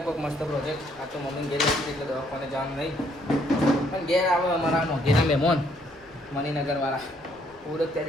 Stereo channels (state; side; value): noise; left; rumble, 30 dB below the sound